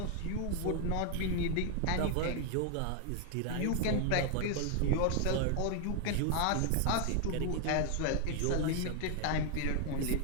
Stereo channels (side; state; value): both; different; correlation 0.01